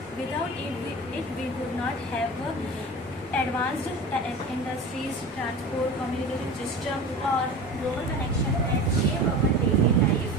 Without it we would not have advanced industries, transport, communication system, or global connection that shape our daily life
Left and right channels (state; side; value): normal; both; correlation 0.33